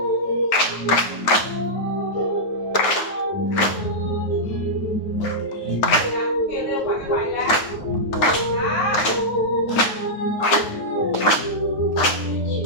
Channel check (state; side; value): late; right; 9.2 ms